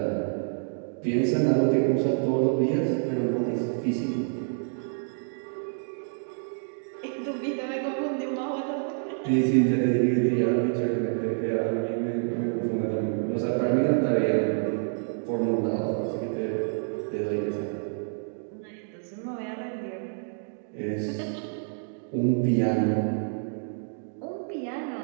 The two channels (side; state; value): left; silent; digital silence